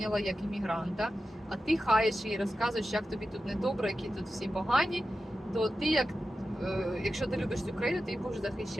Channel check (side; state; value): both; normal; correlation 0.92